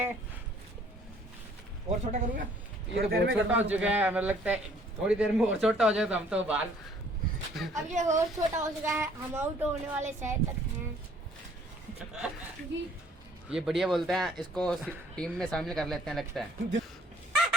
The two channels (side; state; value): both; normal; correlation 0.59